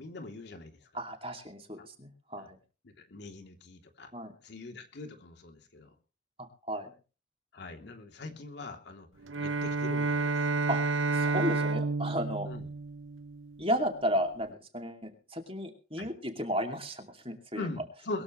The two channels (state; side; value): normal; both; correlation 0.27